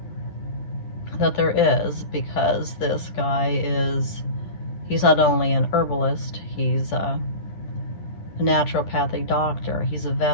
that there is, because this guy he's not only an herbalist, he's a naturopathic doctor, he's a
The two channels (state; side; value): late; right; 10 ms